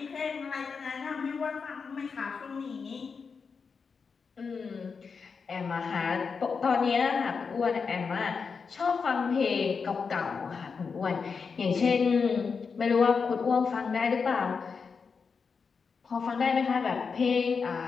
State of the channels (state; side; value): quieter; right; 5.4 dB